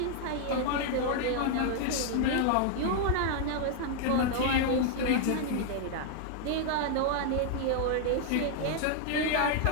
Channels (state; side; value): different; both; correlation 0.00